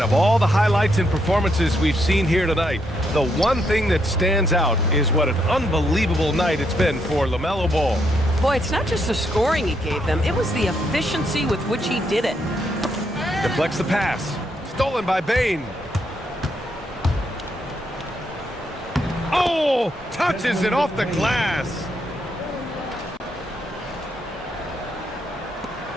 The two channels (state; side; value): normal; both; correlation 0.77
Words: of all the highlights and performances we've seen here tonight, the one thing that stands out is what an unbelievable night it's been for LaMelo Ball. Boy, it's not just the scoring he gave them, it was the efficiency with which he did it. Deflects the pass. Stolen by Bain. Oh, touches it off the glass.